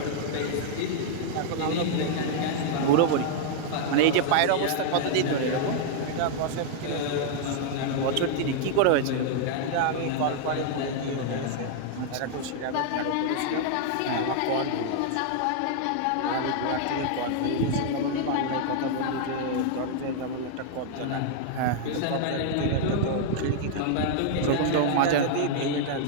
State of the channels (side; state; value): both; different; correlation -0.01